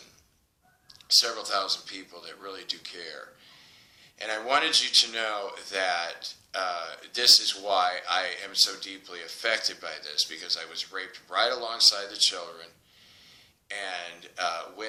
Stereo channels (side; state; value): both; identical; correlation 1.00